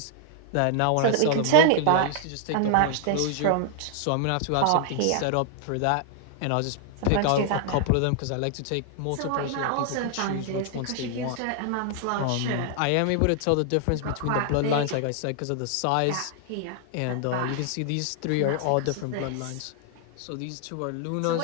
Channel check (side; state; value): both; different; correlation 0.00